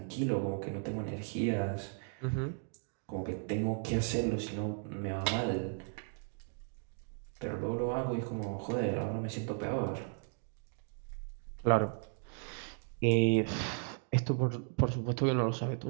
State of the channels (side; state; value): left; silent; 54 dB below the other